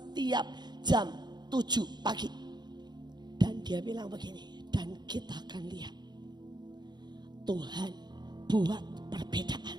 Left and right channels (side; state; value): left; late; 0.21 ms